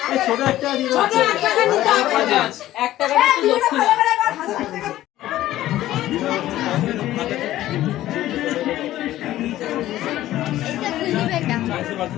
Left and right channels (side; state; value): right; quieter; 14.3 dB